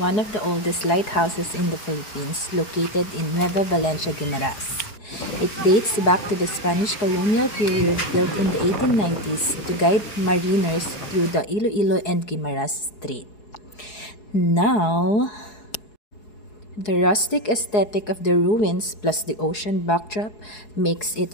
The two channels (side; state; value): right; late; 4.7 ms